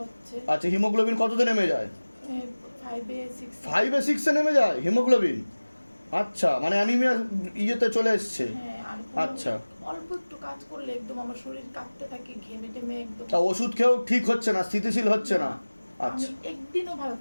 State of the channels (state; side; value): inverted; both; correlation -1.00